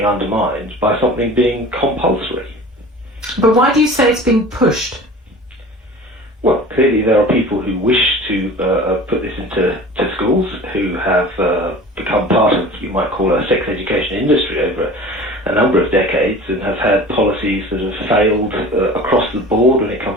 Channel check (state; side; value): normal; both; correlation 0.40